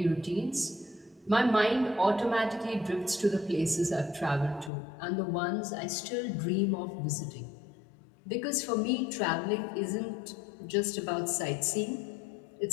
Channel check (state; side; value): drops out; right; at 4.7 s